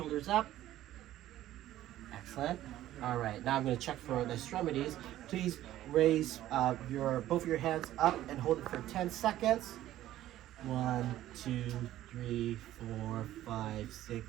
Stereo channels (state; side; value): quieter; left; 13.7 dB